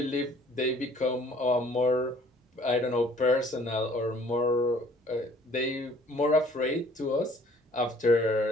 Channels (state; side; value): normal; both; correlation 0.56